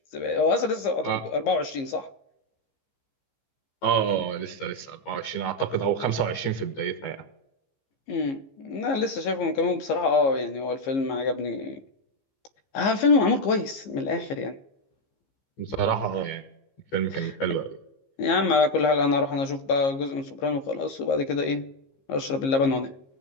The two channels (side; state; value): right; late; 15 ms